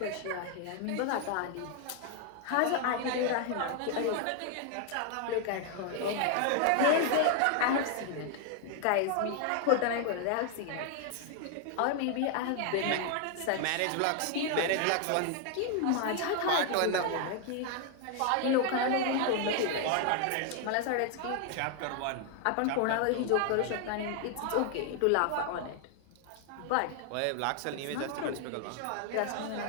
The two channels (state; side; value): different; both; correlation 0.00